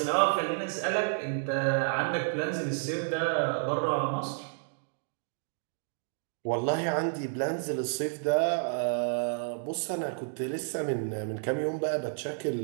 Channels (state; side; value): silent; left; digital silence